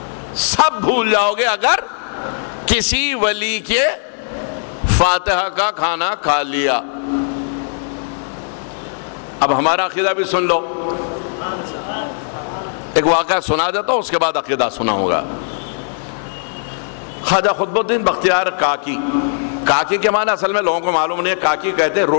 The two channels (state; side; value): silent; right; 67 dB below the other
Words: سب بھول جاؤ گے اگر کسی ولی کے فاتحہ کا کھانا کھا لیا۔ اب ہمارا عقیدہ بھی سن لو، ایک واقعہ سنا دیتا ہوں، اس کے بعد عقیدہ سناؤں گا۔ خواجہ قطب الدین بختیار کاکی، کاکی کے معنی اصل میں لوگوں کو معلوم نہیں ہے، کاکی کہتے ہیں